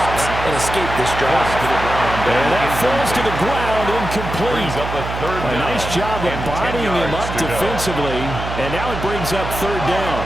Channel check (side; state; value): right; noise; hum, 7 dB below the sound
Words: and escape this drive. And that falls to the ground, incomplete. A nice job of bodying him up defensively, and now it brings up 3rd down.